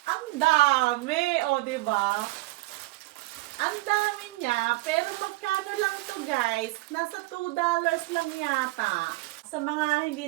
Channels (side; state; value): left; quieter; 21.4 dB